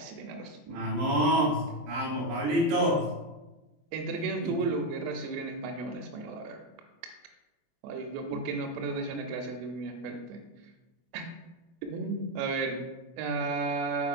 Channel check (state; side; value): late; left; 24 ms